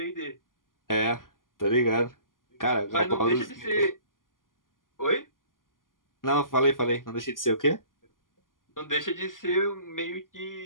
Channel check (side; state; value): right; late; 0.90 ms